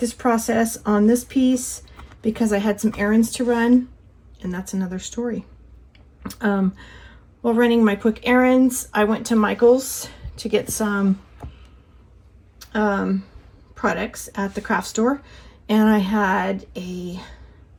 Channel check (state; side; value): identical; both; correlation 1.00